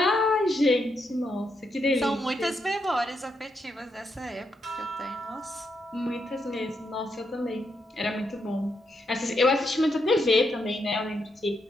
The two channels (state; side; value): normal; both; correlation 0.81